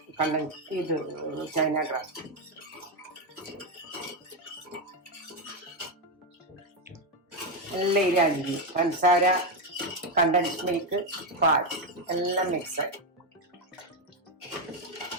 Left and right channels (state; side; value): normal; both; correlation 0.07